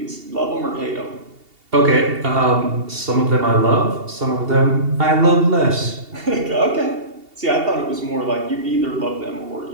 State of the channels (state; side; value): late; left; 2.8 ms